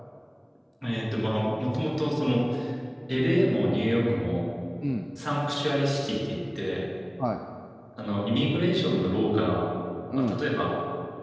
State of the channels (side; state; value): both; identical; correlation 1.00